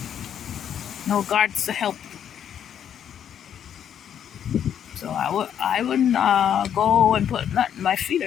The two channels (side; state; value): right; quieter; 9.2 dB